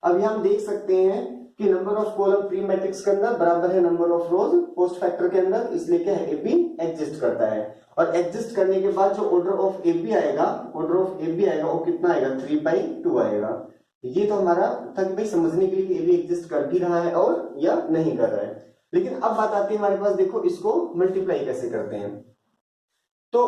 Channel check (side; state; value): both; identical; correlation 1.00